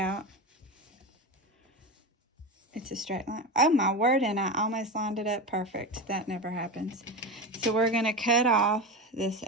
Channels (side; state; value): both; normal; correlation 0.22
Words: It's a straight line. Oh my word, and I almost lined it up perfect. That never happens. So we're going to cut off this